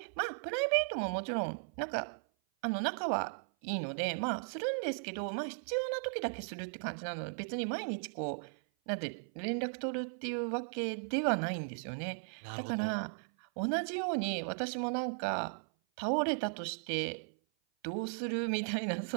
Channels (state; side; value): silent; left; 53 dB below the other